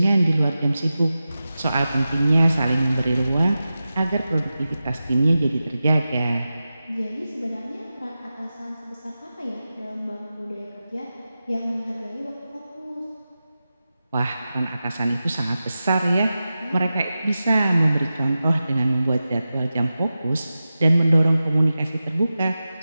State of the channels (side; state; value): both; inverted; correlation -0.94